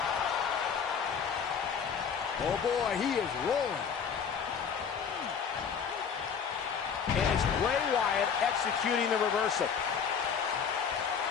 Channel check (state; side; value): quieter; right; 6.8 dB